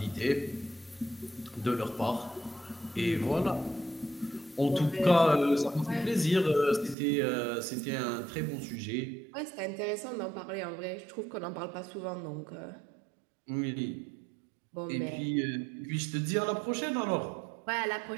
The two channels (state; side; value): drops out; left; at 7.0 s